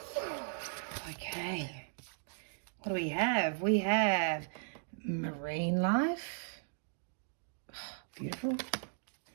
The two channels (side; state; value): left; silent; digital silence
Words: Okay. What do we have? We have marine life. Beautiful.